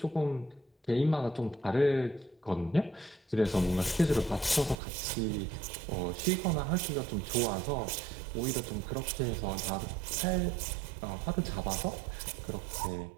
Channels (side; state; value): left; drops out; at 4.8 s